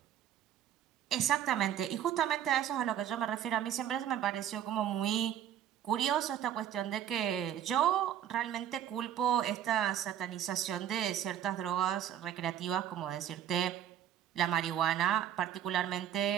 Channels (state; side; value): quieter; left; 10.4 dB